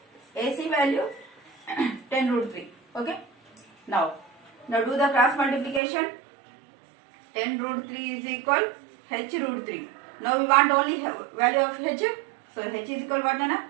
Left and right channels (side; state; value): left; drops out; at 5.8 s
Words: AC value 10 root 3. Okay. Now do the cross multiplication. 10 root 3 is equal H root 3. Now we want only value of H. So H is equal what Nana?